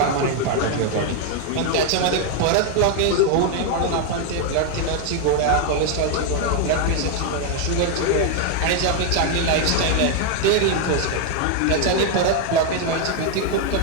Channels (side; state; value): both; different; correlation 0.01